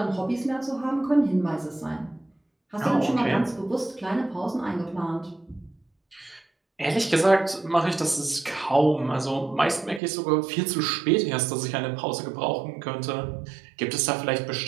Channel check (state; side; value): drops out; left; at 10.0 s